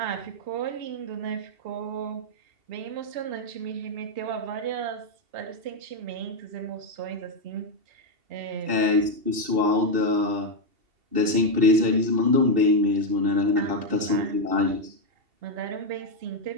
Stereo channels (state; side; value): late; left; 2.7 ms